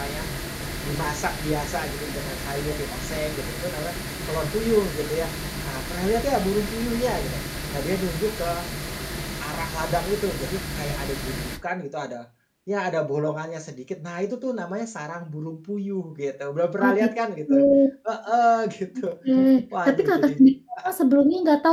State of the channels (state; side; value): identical; both; correlation 1.00